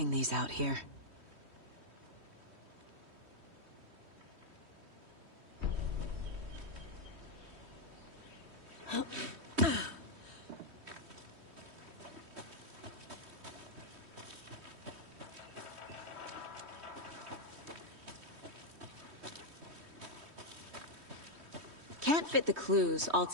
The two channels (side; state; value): left; late; 3.1 ms